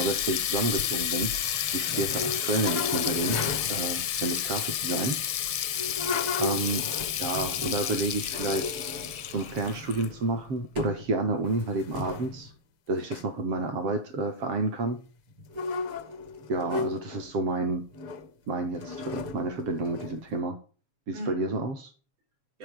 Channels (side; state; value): left; late; 7.3 ms